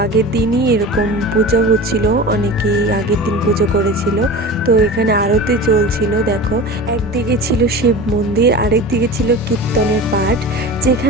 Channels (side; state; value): both; normal; correlation 0.33